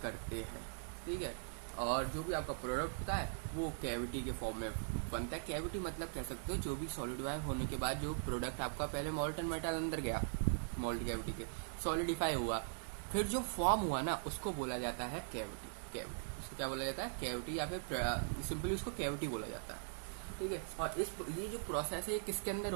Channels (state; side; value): silent; left; digital silence